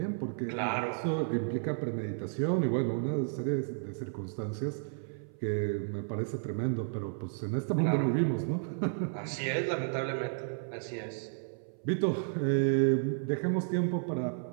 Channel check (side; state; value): left; silent; 56 dB below the other